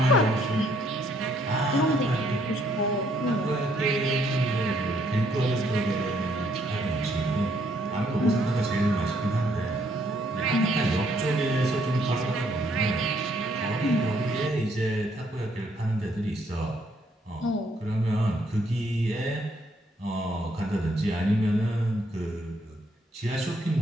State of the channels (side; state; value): both; normal; correlation 0.69